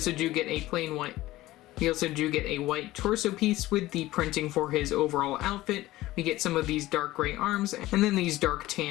do get a plain white torso piece with the printing for his overall outfit. We get some of these dark gray arms and then these dark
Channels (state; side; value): quieter; right; 16.9 dB